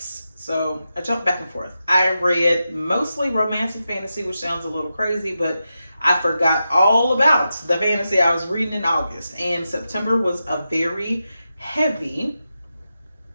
So I jumped back and forth. I read mostly romance and fantasy, which sounds a little crazy, but I forgot all about the fantasy I was reading in August. And September was a very heavy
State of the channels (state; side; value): inverted; both; correlation -0.89